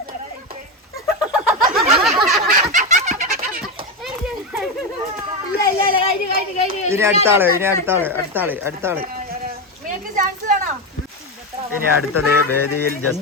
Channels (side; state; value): both; normal; correlation 0.13